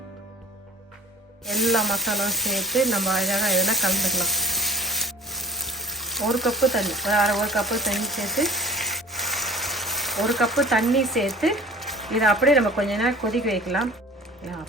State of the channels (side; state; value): both; normal; correlation 0.47